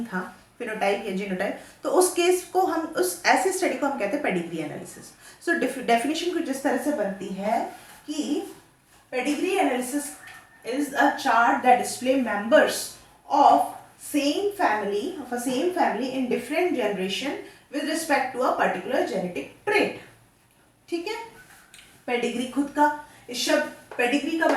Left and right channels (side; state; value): both; identical; correlation 1.00